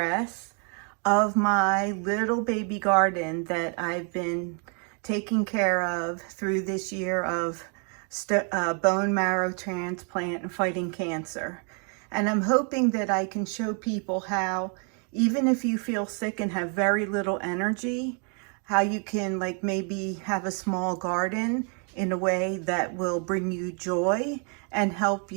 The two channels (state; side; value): quieter; left; 40.0 dB